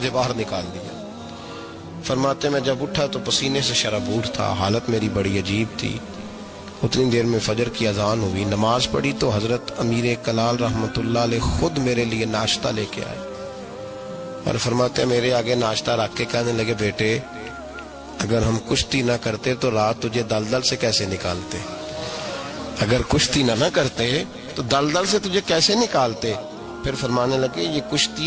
باہر نکال دیا۔ فرماتے میں جب اٹھا تو پسینے سے شرابور تھا، حالت میری بڑی عجیب تھی۔ اتنی دیر میں فجر کی اذان ہوئی، نماز پڑھی تو حضرت امیر کلال رحمت اللہ علیہ خود میرے لیے ناشتہ لے کے آئے اور فرماتے میرے آگے ناشتہ رکھ کے کہنے لگے بیٹے اگر ہم کشتی نہ کرتے تو رات تجھے دلدل سے کیسے نکالتے، اگر کشتی نہ کرتے تو دلدل سے تجھے کیسے نکالتے۔ پھر فرمانے لگے یہ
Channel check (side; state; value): both; identical; correlation 1.00